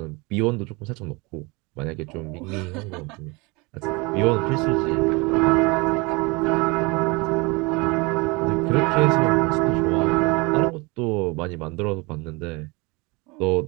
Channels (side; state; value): left; quieter; 26.8 dB